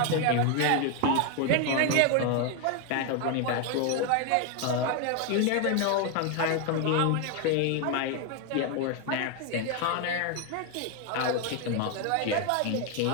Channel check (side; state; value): both; different; correlation 0.01